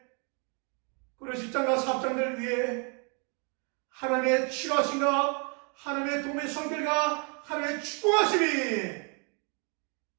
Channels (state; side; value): quieter; left; 36.1 dB